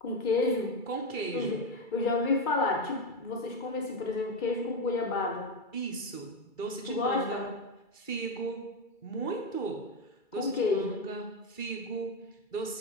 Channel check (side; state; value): right; late; 2.3 ms